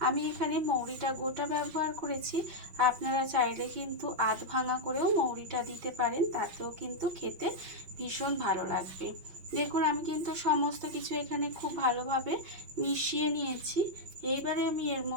আমি এখানে মৌরিটা গোটা ব্যবহার করেছি, আপনারা চাইলে কিন্তু আধ ভাঙা করেও মৌরিটা দিতে পারেন, তাতেও কিন্তু খেতে ভীষণ ভালো লাগবে। দেখুন আমি কিন্তু সমস্ত কিছু এখানে খুব ভালোভাবে মিশিয়ে নিয়েছি। এইবারে আমি এর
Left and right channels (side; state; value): left; late; 5.7 ms